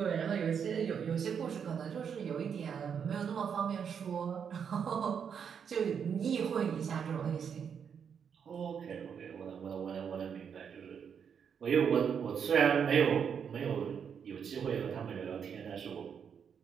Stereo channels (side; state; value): left; quieter; 7.3 dB